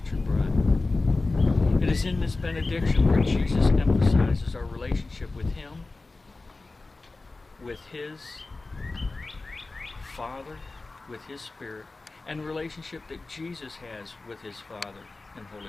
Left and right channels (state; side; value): quieter; right; 3.4 dB